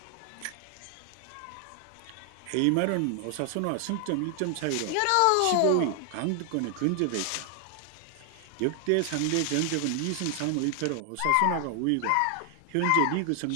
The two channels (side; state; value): both; different; correlation 0.00